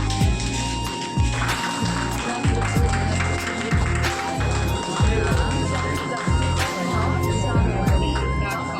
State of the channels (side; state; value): both; identical; correlation 1.00